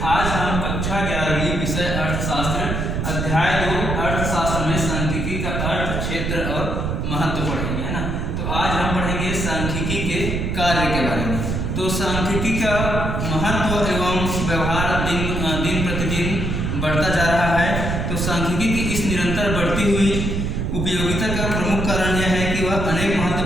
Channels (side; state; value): right; noise; rumble, 1 dB below the sound